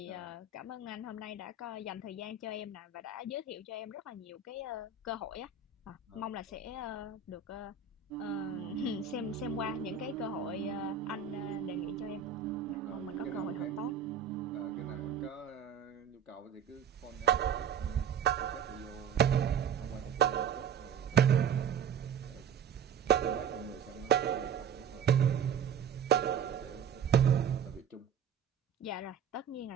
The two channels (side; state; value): left; quieter; 7.1 dB